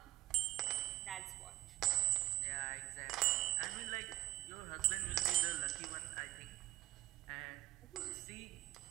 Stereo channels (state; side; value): quieter; left; 16.0 dB